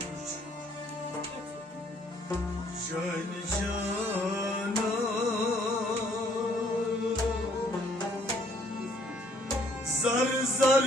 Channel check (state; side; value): normal; both; correlation 0.64